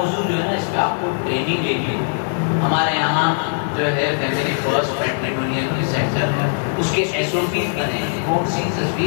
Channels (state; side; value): silent; right; digital silence